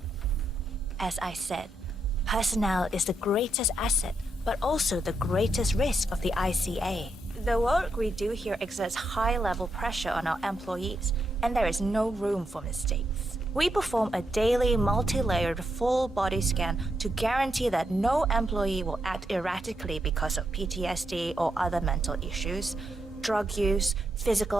As I said, personnel is the greatest asset, but also the greatest risk of the ICA. The work we do here exerts high-level pressure on our employees, and there is no room for mistakes. We perform a daily, multi-layered, full-body scan to guarantee that no employee will act erratically because of PTSD or other mental issues, drug use,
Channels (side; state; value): both; normal; correlation 0.82